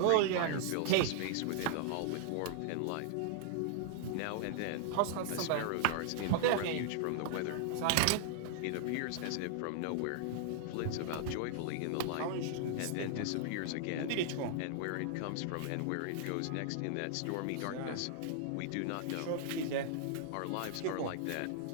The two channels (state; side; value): different; both; correlation -0.01